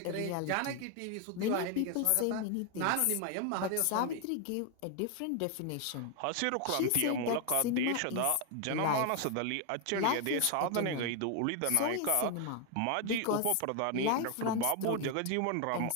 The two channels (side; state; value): both; different; correlation 0.01